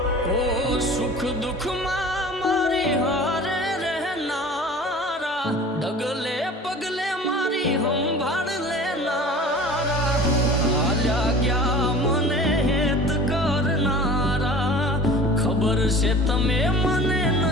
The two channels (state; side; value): normal; both; correlation 0.42